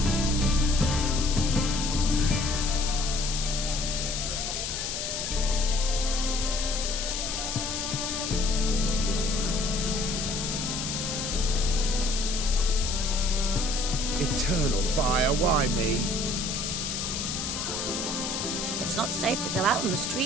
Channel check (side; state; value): left; noise; hiss, 3 dB below the sound